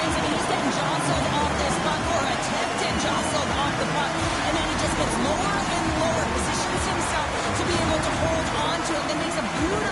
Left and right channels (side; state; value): both; identical; correlation 1.00